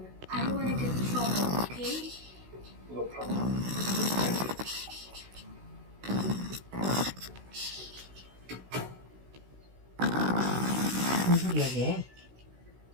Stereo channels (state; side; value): late; left; 16 ms